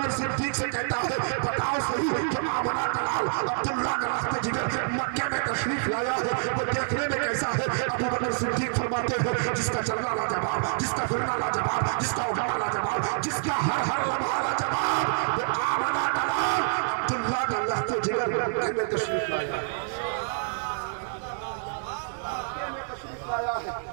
सिद्दीक से कहता है बताओ सही जो आमना का लाल अब्दुल्ला का रास्ते जिगर मक्के में तशरीफ लाया है वो देखने में कैसा है? अबू बकर सिद्दीक फरमाते हैं जिसका चलना लाजवाब, जिसका फिरना लाजवाब, जिसका उठना लाजवाब, जिसका हर हर लम्हा लाजवाब, वो आमना का लाल अब्दुल्ला का रास्ते जिगर मक्के में तशरीफ लाया है।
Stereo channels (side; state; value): left; silent; digital silence